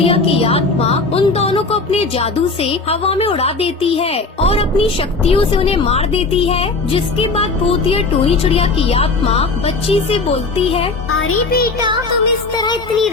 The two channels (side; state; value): right; quieter; 3.8 dB